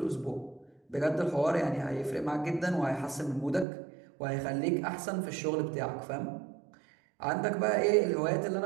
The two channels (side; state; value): left; drops out; at 3.7 s